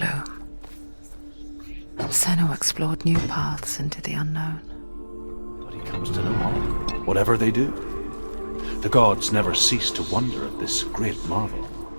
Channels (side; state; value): both; inverted; correlation -1.00